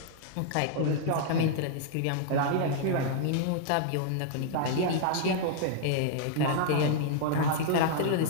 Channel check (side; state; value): both; different; correlation -0.01